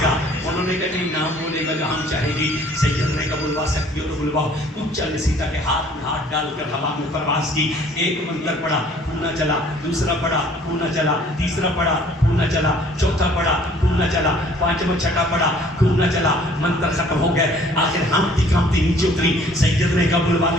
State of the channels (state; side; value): normal; both; correlation 0.56